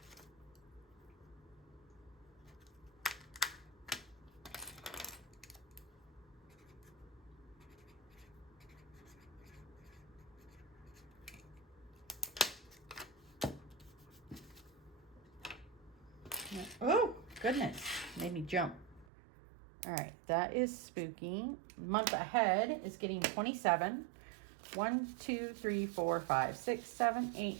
Oh, goodness. Made me jump. All right, that is spooky. Month ahead is getting 27. 1, 2, 3, 4, 5, 6, 7,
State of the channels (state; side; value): drops out; left; at 19.1 s